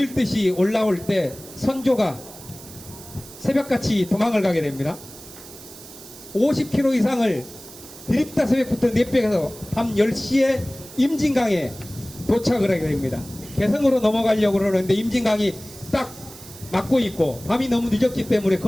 올라올 때 선조가 새벽같이 도망을 가게 됩니다. 50km 이상을 드립다 새벽부터 내빼서 밤 10시에 임진강에 도착을 하게 됩니다. 개성으로 넘어가려고 그러는데 임진강이 딱 막고 있고 밤이 너무 늦었기 때문에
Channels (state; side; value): noise; right; hiss, 17 dB below the sound